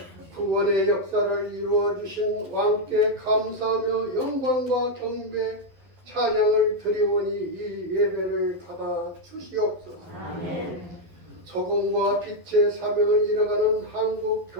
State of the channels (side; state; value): left; late; 11 ms